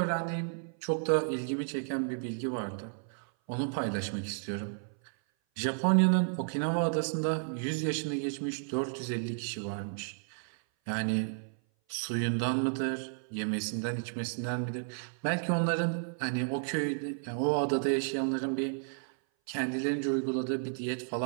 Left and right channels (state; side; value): silent; left; 56 dB below the other